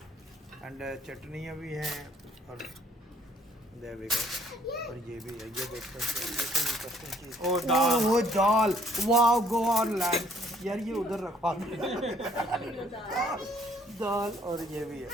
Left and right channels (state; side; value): normal; both; correlation 0.64